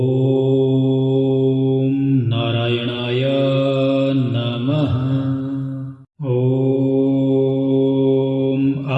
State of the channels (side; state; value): both; identical; correlation 1.00